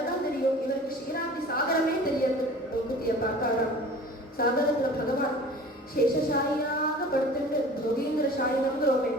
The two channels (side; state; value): both; normal; correlation 0.43